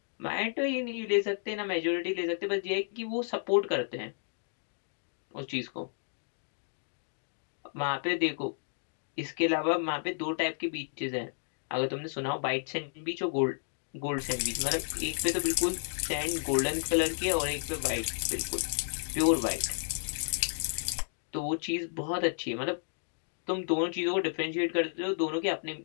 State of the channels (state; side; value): silent; right; digital silence